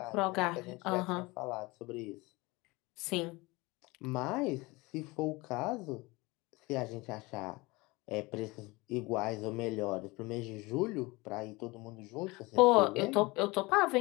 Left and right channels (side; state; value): right; quieter; 23.4 dB